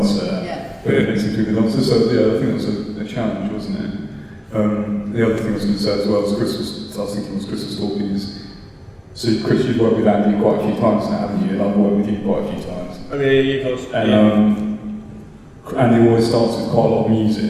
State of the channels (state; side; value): identical; both; correlation 1.00